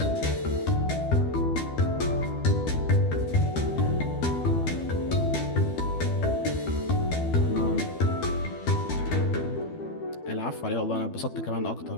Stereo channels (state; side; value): late; right; 12 ms